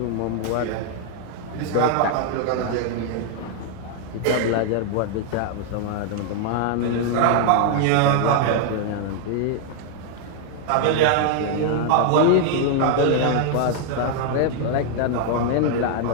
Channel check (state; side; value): different; both; correlation 0.00